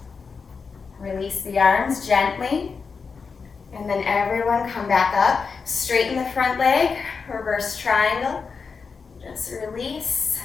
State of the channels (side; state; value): right; quieter; 5.2 dB